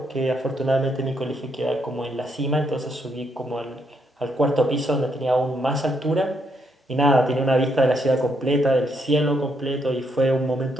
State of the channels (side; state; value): both; normal; correlation 0.76